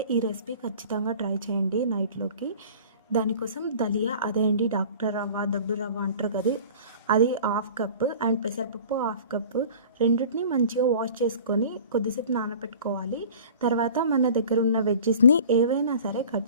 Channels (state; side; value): inverted; both; correlation -0.43